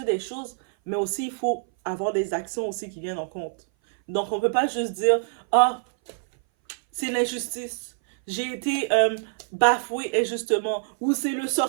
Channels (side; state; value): left; silent; 59 dB below the other